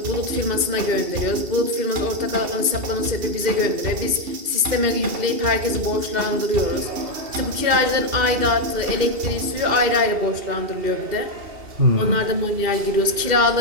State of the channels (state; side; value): late; left; 2.7 ms